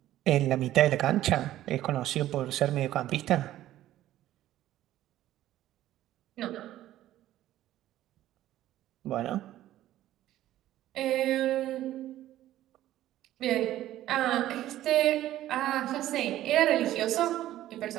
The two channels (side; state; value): left; quieter; 13.7 dB